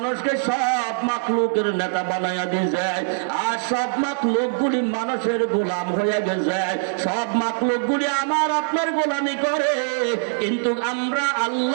সব মাখলুকের নেতা বানাইয়া দিয়েছে। আর সব মাখলুকগুলি মানুষের গোলাম হয়ে গেছে, সব মাখলুকগুলি আমার আপনার গোলামি করে, কিন্তু আমরা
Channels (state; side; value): silent; left; digital silence